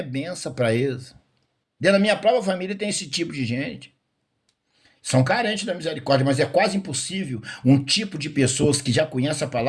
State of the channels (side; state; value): both; identical; correlation 1.00